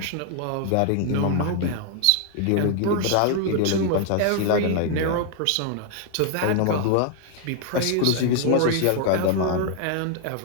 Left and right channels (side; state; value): both; different; correlation 0.00